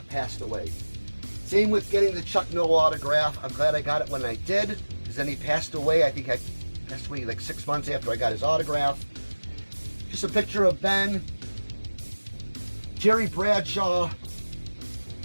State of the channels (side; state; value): both; inverted; correlation -1.00